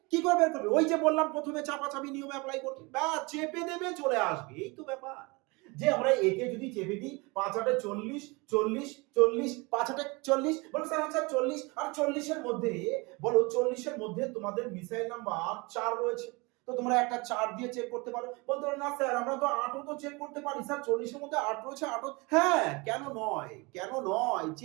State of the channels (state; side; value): quieter; left; 26.6 dB